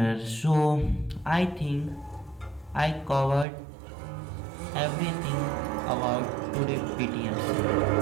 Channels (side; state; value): left; drops out; at 3.5 s